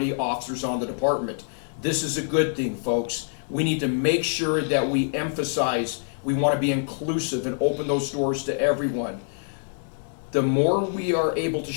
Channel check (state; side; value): silent; right; digital silence